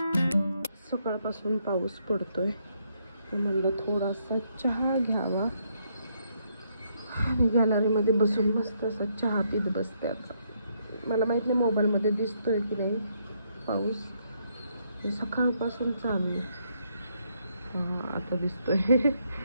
सकाळपासून पाऊस पडतोय, म्हणलं थोडासा चहा घ्यावा आणि गॅलरीमध्ये बसून मस्त असा चहा पीत बसते. आता मला माहित नाही मोबाईलमध्ये दिसतोय की नाही पाऊस, सकाळपासून चालू आहे. आता दिसतोय.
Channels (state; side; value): inverted; both; correlation -0.74